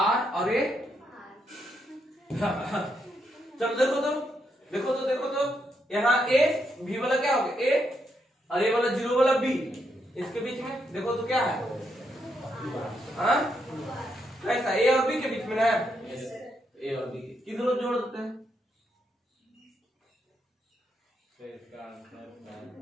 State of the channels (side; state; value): both; normal; correlation 0.79